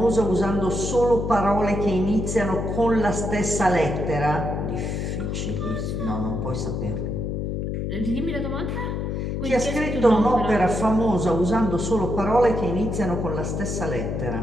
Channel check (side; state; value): left; noise; hum, 2 dB below the sound